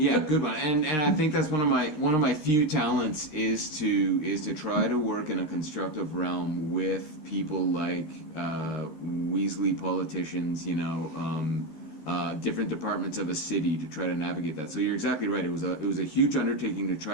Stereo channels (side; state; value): right; late; 13 ms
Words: good one. And I think that's one of my few talents is to try to work in a constructive realm with people like Weasley politicians, different departments of a city to try to navigate that. So you're exactly right. It was a huge undertaking to